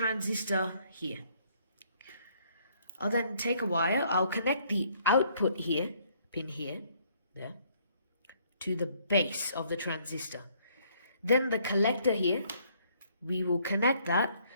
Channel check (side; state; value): both; inverted; correlation -0.65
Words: here. I'll then take a wire, I'll connect the output here, pin here, there, to the base of the transistor. Then the collector here, we will connect that